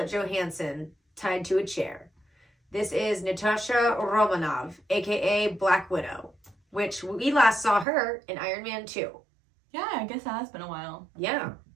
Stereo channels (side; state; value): left; drops out; at 7.9 s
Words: Johansson tied to a chair. This is Natasha Romanov, aka Black Widow, which we last saw her in Iron Man 2. Yeah, I guess it has been a while. Yeah.